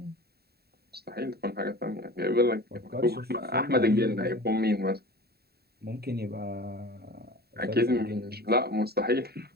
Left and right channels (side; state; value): left; late; 0.46 ms